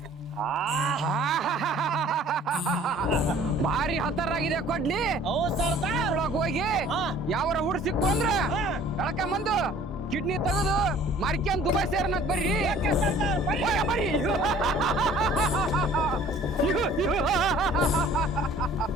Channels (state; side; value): normal; both; correlation 0.52